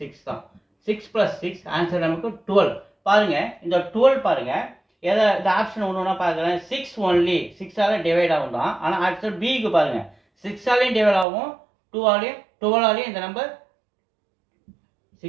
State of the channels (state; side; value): drops out; left; at 11.2 s